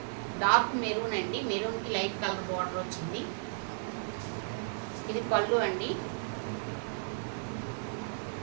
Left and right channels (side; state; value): left; silent; digital silence